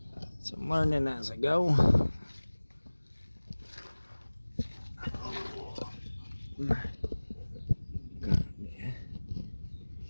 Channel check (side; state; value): both; inverted; correlation -1.00